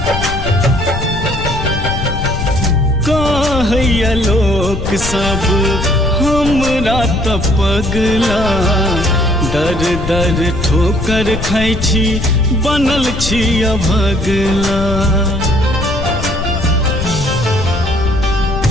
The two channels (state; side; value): noise; left; rumble, 6 dB below the sound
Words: कहैया लोक सब हमरा त पगला दर दर ठोकर खाइ छी बनल छी अभगला